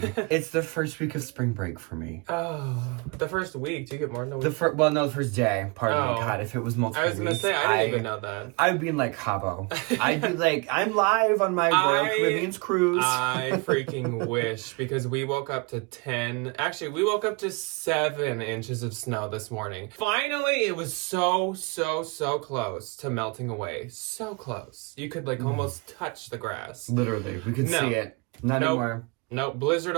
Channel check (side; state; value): left; quieter; 29.4 dB